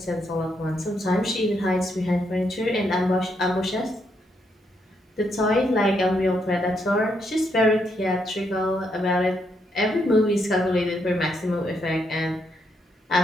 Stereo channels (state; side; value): normal; both; correlation 0.77